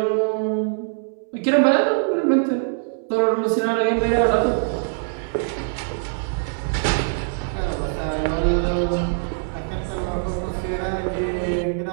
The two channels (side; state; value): left; silent; 64 dB below the other